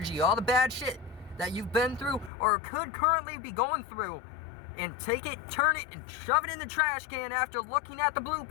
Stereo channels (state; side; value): drops out; right; at 2.3 s